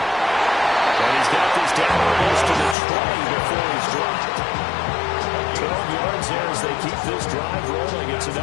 he's got this down almost to the 20 before he's dropped. 12 yards there as they keep this drive rolling. It's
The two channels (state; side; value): drops out; right; at 2.8 s